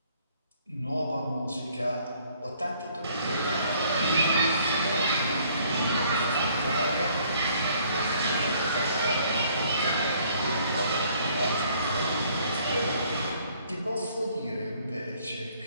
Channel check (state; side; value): inverted; both; correlation -0.61